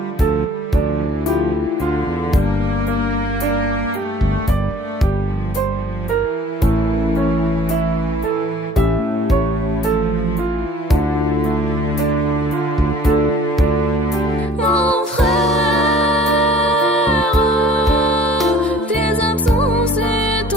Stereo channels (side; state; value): both; normal; correlation 0.52